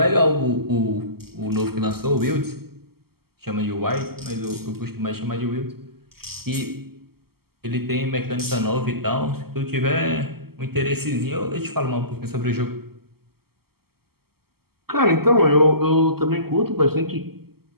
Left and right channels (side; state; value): left; late; 0.95 ms